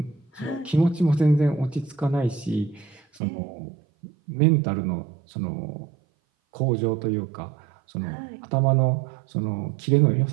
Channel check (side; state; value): left; drops out; at 3.2 s